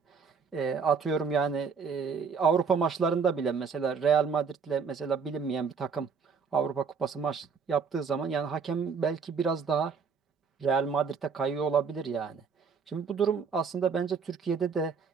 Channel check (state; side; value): quieter; left; 5.7 dB